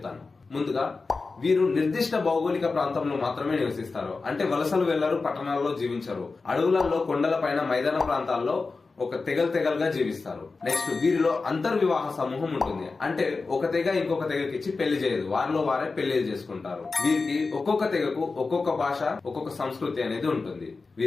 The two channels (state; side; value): quieter; right; 4.1 dB